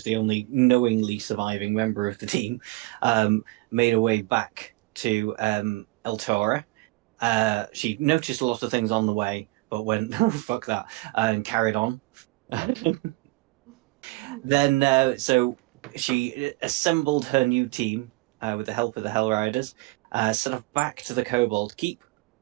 the only knowingly surviving member of the team, made her way back to El Tora. She noticed a lot of things on the way, but went, oh, fuck that, and carried on. Then, so she assembled her new team with the help of the Hell Riders, set off back to the Kobold Keep,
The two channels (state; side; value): quieter; left; 22.4 dB